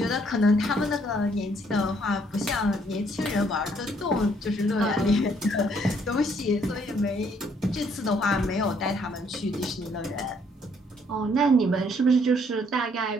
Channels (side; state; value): both; normal; correlation 0.67